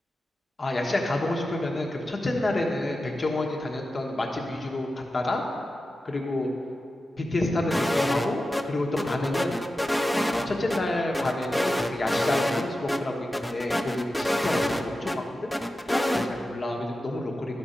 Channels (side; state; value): both; normal; correlation 0.92